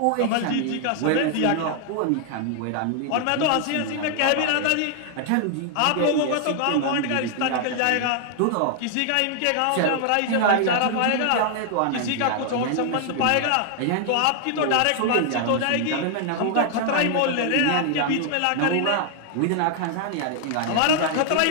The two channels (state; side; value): different; both; correlation 0.00